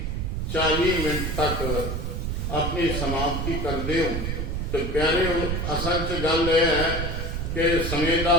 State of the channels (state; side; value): noise; right; rumble, 2 dB below the sound